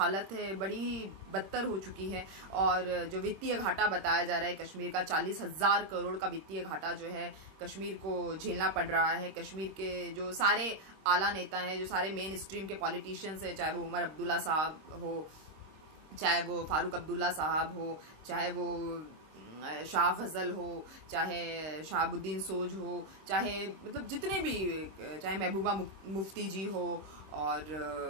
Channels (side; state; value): left; late; 26 ms